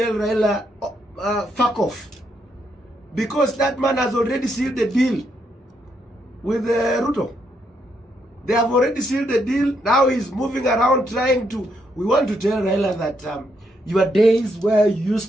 Raila, fuck off, because that man has already sealed the deal with Ruto. They have already sealed the deal. Now he's moving around trying to... We want to tell Raila that your days where you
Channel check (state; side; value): normal; both; correlation 0.77